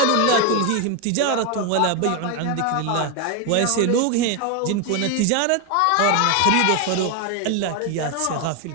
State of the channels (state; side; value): different; both; correlation 0.01